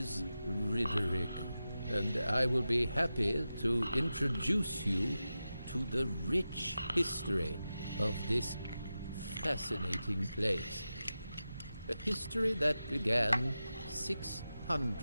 Riderick, and I will be happy to introduce you to the rich history of this fascinating place. A history that began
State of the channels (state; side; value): inverted; both; correlation -0.92